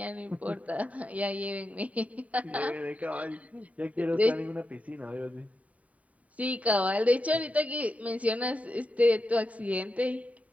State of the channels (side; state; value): left; late; 0.069 ms